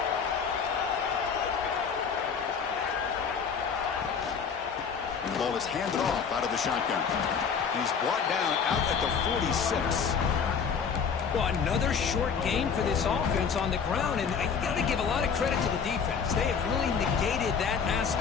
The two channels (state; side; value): quieter; right; 6.4 dB